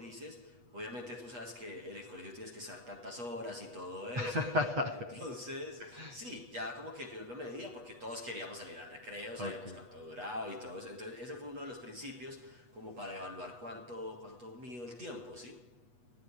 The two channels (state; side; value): late; left; 8.2 ms